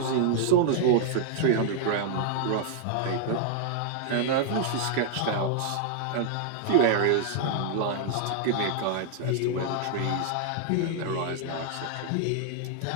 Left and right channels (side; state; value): both; different; correlation -0.01